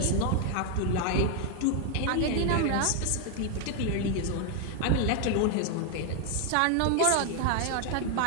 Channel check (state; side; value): different; both; correlation 0.00